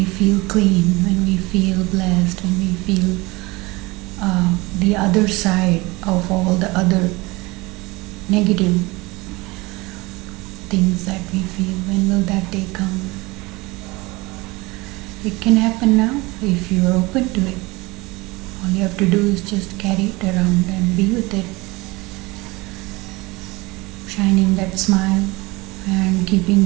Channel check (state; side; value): quieter; left; 23.1 dB